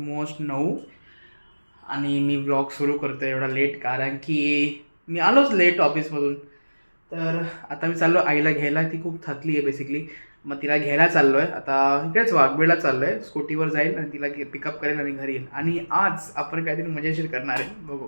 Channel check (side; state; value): both; inverted; correlation -1.00